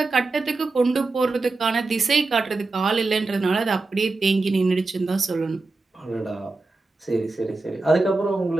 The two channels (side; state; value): left; quieter; 3.5 dB